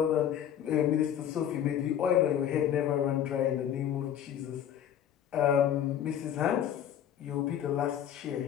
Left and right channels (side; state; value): right; quieter; 9.9 dB